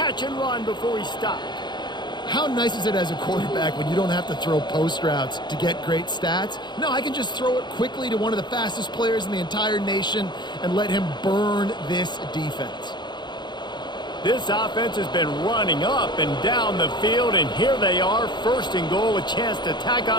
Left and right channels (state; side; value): late; right; 0.21 ms